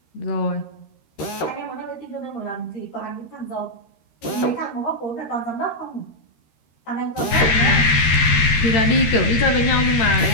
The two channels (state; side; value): late; right; 13 ms